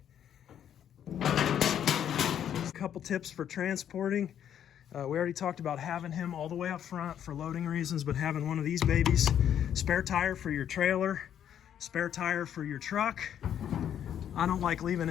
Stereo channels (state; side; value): quieter; right; 9.7 dB